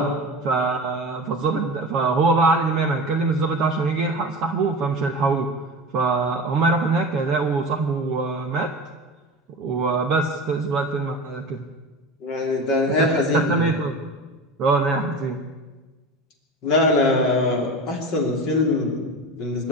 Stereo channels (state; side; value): normal; both; correlation 0.30